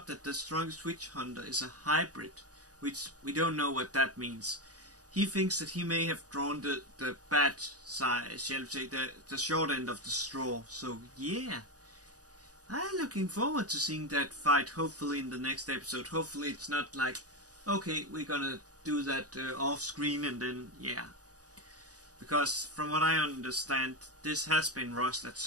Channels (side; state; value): left; late; 0.67 ms